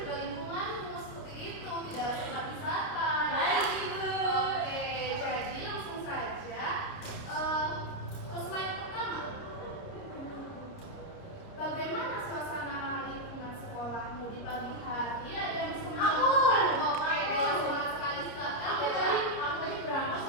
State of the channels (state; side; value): late; right; 30 ms